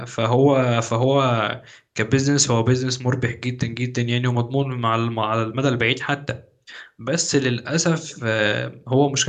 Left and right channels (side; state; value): both; identical; correlation 1.00